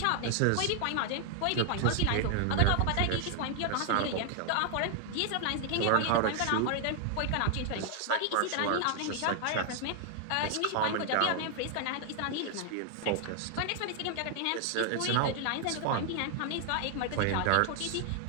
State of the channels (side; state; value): both; different; correlation 0.00